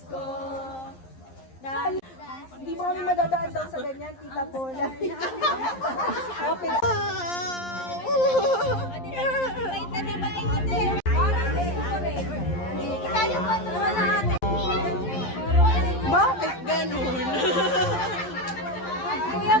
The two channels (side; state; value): right; late; 11 ms